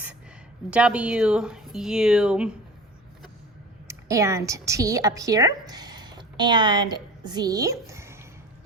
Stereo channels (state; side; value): normal; both; correlation 0.38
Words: W, U, and T up here, and Z.